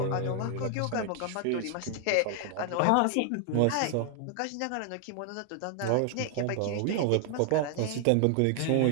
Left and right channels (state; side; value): different; both; correlation 0.00